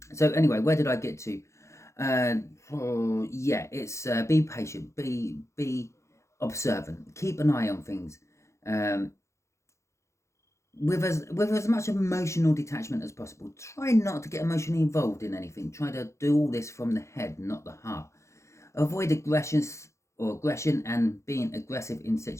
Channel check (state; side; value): late; right; 0.14 ms